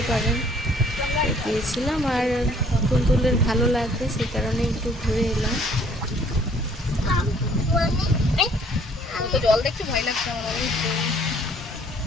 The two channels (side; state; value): both; normal; correlation 0.59